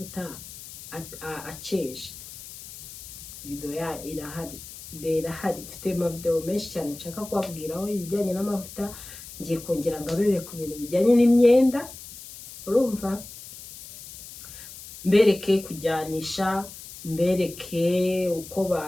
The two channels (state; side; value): noise; left; hiss, 14 dB below the sound